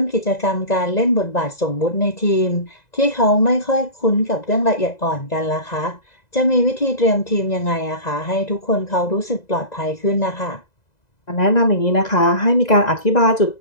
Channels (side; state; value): right; late; 2.0 ms